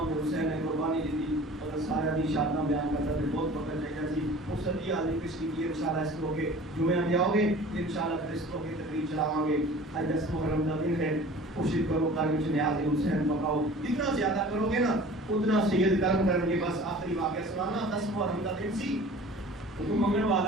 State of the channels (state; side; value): normal; both; correlation 0.44